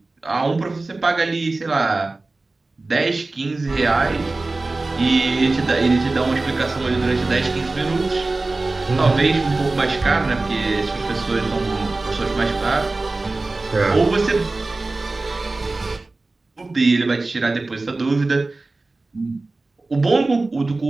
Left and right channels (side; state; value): left; quieter; 3.3 dB